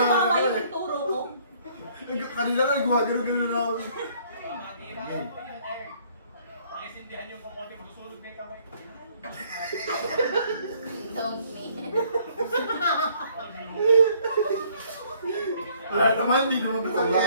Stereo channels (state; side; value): inverted; both; correlation -0.62